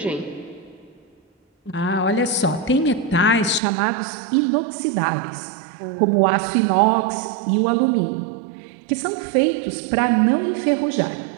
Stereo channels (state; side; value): drops out; left; at 3.6 s